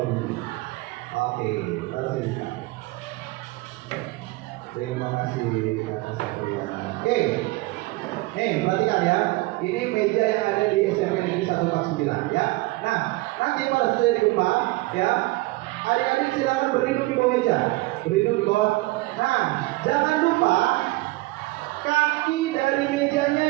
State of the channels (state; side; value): quieter; left; 21.4 dB